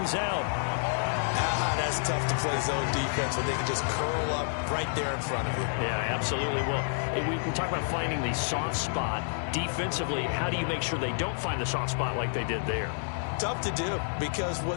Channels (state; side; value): silent; right; digital silence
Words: out. That's tough to play zone defense when they can just curl up right there in front of you. Yeah, absolutely. Well, we talk about finding the soft spot. Defensively, how do you make sure they don't find the soft spot like they did there? Tough to do because